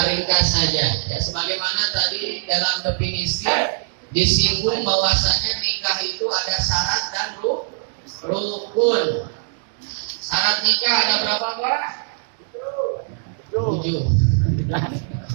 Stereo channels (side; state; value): left; silent; digital silence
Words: ringkas saja ya, sebagaimana tadi dalam definisi disinggung bahwasanya nikah itu ada syarat dan rukun. Syarat nikah ada berapa, Pak? 7.